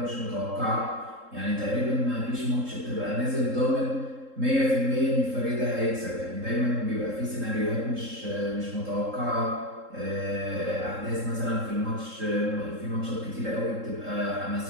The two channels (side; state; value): left; late; 3.7 ms